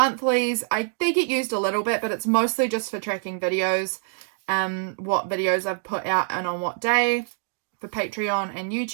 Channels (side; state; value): left; silent; 62 dB below the other